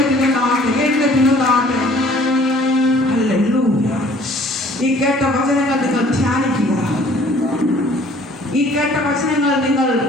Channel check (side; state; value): both; normal; correlation 0.54